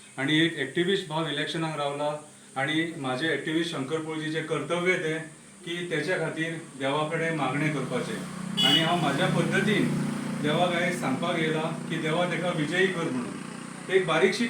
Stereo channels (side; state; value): both; identical; correlation 1.00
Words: आणि एक एक्टिविस्ट भाव इलेक्शनाक रावला आणि माझे एक्टिविस्ट शंकर पळजीचे कर्तव्य ते की त्याच्या खातीर देवा कडेन मागणे करपाचे आणि हांव म्हाज्या पद्दतीन देवाक आयज सांगपाक येयला की देवा ताका विजयी कर म्हणून एक बारीकशी